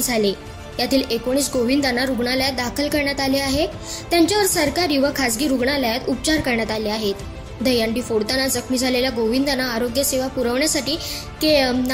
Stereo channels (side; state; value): both; identical; correlation 1.00